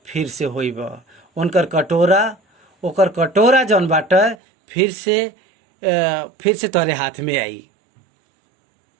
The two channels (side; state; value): left; drops out; at 4.4 s